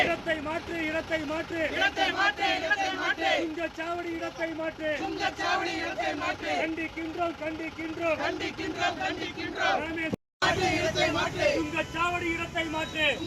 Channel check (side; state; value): both; identical; correlation 1.00